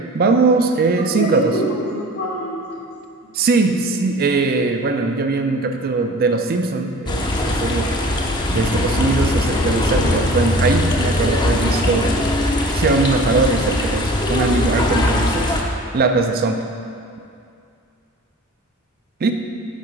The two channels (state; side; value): normal; both; correlation 0.43